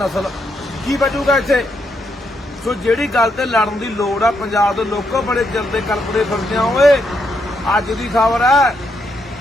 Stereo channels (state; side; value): normal; both; correlation 0.78